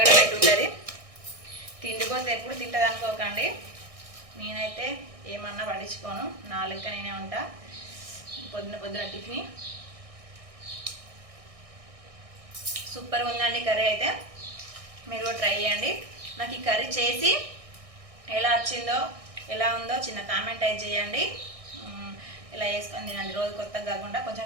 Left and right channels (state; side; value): late; left; 1.6 ms